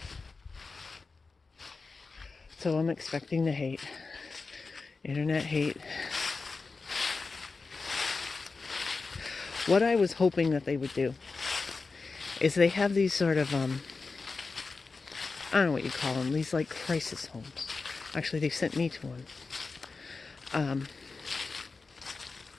So I'm expecting the hate. Internet hate. What I was hoping that they would do is they have these sort of, I don't know what you call them, these like crisis homes. Actually, they sent me to one.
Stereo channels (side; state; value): right; quieter; 4.2 dB